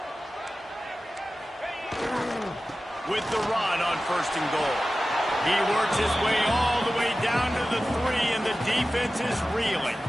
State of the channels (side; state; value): both; normal; correlation 0.95